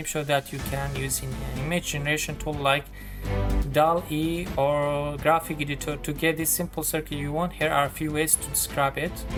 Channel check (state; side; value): identical; both; correlation 1.00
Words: that you can use in an image generation tool like DALL-E or graphic editor. To get this simple circle you want, here are a few ways to describe it.